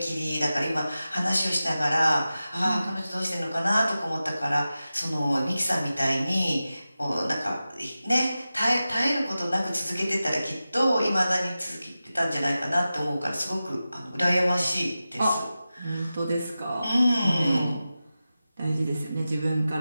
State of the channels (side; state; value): both; inverted; correlation -0.94